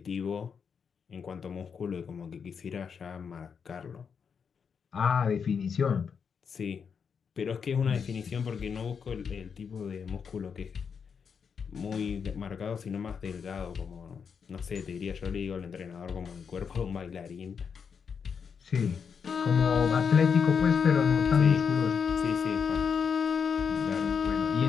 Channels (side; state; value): right; quieter; 6.5 dB